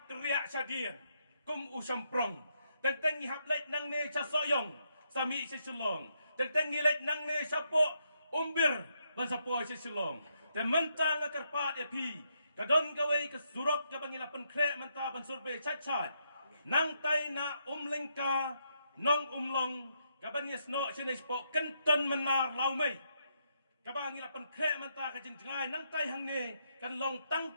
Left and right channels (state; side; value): inverted; both; correlation -0.78